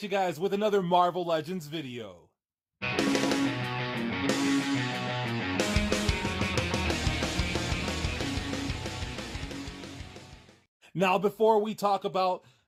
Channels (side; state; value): both; identical; correlation 1.00